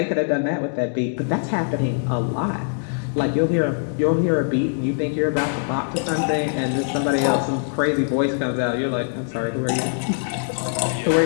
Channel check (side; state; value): right; silent; digital silence